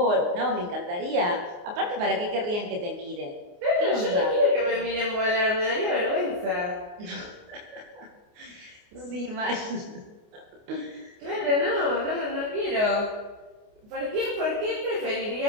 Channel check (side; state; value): left; late; 29 ms